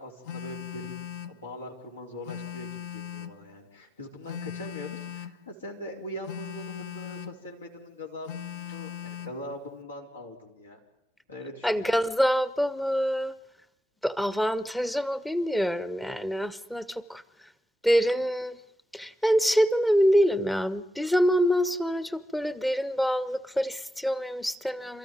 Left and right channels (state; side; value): normal; both; correlation 0.87